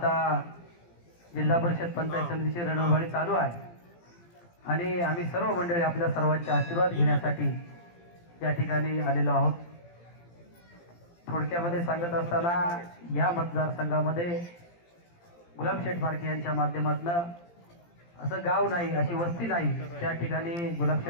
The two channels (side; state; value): right; late; 17 ms